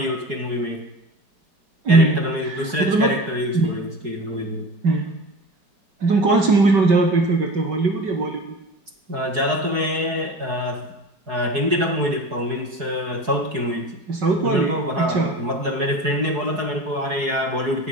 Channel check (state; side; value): late; left; 4.7 ms